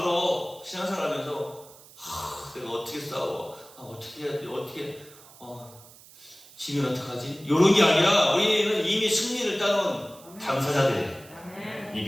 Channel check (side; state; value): right; noise; hiss, 22 dB below the sound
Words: 신앙생활 하면서 내가 어떻게 싸워? 어떻게 해야 돼? 지면 어떡하지? 이런 게 아니라 우리는 이미 승리를 따놓은 당사자들이에요. 이